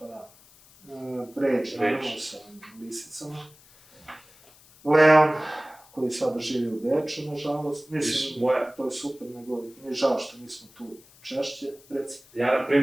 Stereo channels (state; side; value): noise; left; hiss, 26 dB below the sound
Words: da. Pređe, naravno, sa lisicama. Leon, koji sada živi u Beču, nažalost. Mislim, to je super, nego mi je žao što nismo tu češće, reci. Ja, na